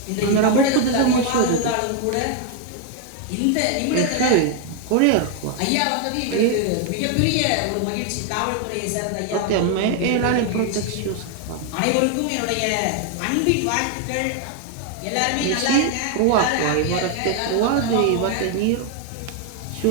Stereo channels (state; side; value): different; both; correlation 0.01